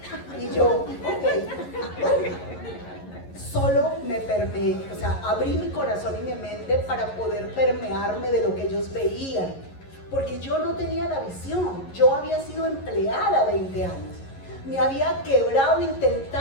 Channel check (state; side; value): late; right; 11 ms